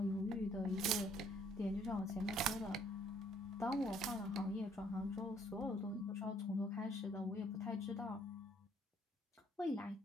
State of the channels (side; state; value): both; normal; correlation 0.64